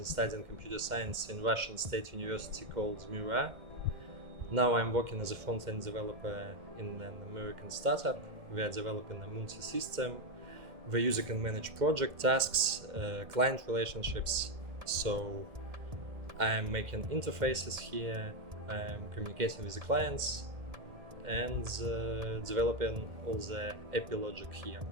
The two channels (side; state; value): left; late; 2.1 ms